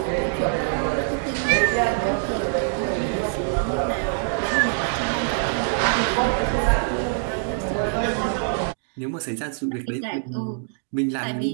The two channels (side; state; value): left; silent; digital silence